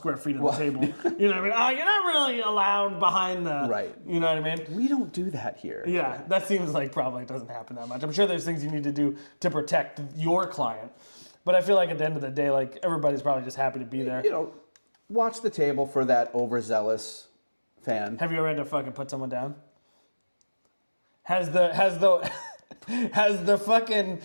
feet of the table." You know what I mean? Oh, you're not really allowed behind the. Right. You know what I mean? We don't do that here. Yeah, that seems like probably doesn't happen that much. I'm sure there's things you need to do to protect your client, but I feel like at the end of the day, like everybody's probably just happy to be there. You know, watch the table for that overzealous fan. Have you ever had to fucking put someone down? Has the fucking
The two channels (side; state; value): both; inverted; correlation -1.00